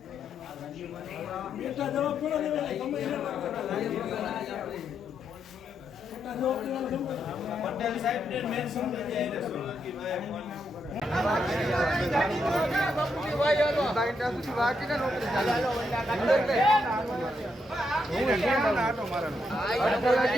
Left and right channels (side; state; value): both; normal; correlation 0.80